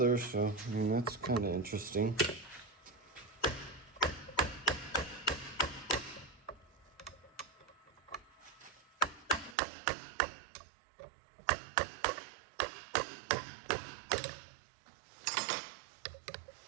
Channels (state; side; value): drops out; left; at 9.6 s